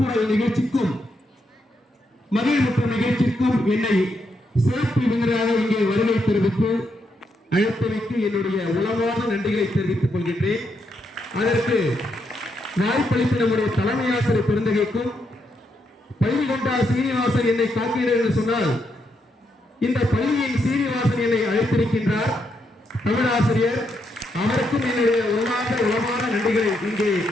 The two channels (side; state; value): both; normal; correlation 0.79